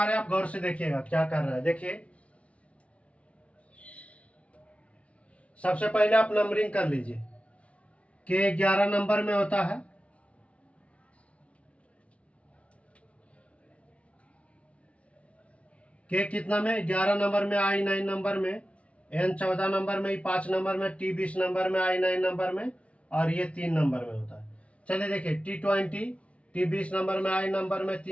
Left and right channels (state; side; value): late; right; 0.063 ms